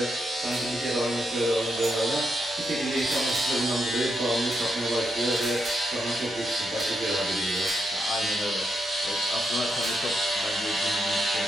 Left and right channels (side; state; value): both; normal; correlation 0.82